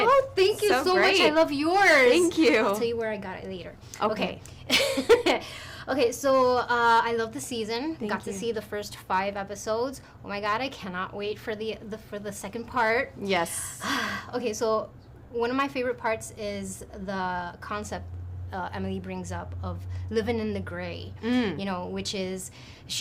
thank you so much. I love yours. Thank you. I'll tell you where I got it later. Okay. Okay, so I love the season. Got you. to see the first 5 episodes. Oh my god, I cannot wait for the second part. Yes. Okay, so one of my favorite parts is the concept Emily brings up of living in the gray. You know, which is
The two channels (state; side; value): identical; both; correlation 1.00